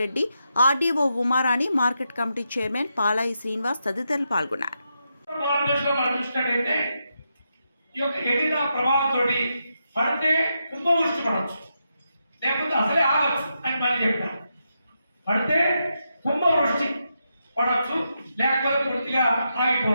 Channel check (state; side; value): inverted; both; correlation -0.84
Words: RDO Umarani, market committee chairman Palai Srinivas తదితరులు పాల్గొన్నారు. పడితే కుంభవృష్టి పడవచ్చు, లేకపోతే అసలే ఆగచ్చు అని మళ్ళీ చెప్తాను. పడితే కుంభవృష్టి పడవచ్చు, లేకపోతే పూర్తిగా